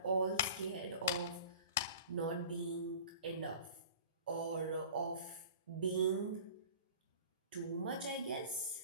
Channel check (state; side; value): inverted; both; correlation -0.43